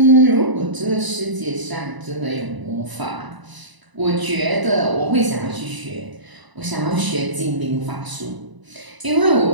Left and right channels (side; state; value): left; late; 1.0 ms